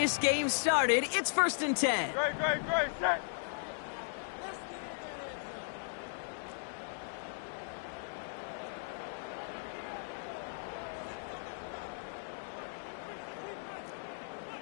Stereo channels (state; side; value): silent; right; digital silence